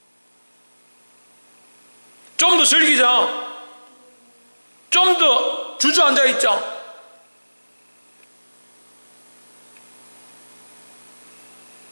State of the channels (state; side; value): inverted; both; correlation -1.00